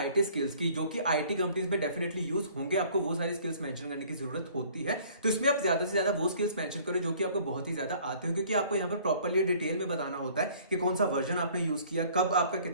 स्किल्स की, जो कि आईटी कंपनीज में डेफिनेटली यूज होंगे, आपको वो सारी स्किल्स मेंशन करने की जरूरत होती है। तो इसमें आप ज्यादा से ज्यादा वो स्किल्स मेंशन करें जो कि आपको बहुत ही ज्यादा आते हो, क्योंकि आपको यहाँ पर प्रॉपर्ली डिटेल में बताना होता है कि कौन सा वर्जन आपने यूज किया, कब आपका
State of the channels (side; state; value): both; inverted; correlation -0.54